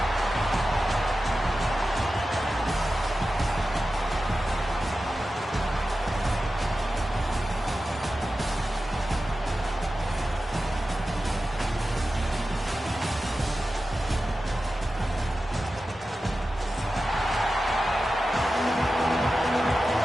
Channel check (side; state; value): both; normal; correlation 0.93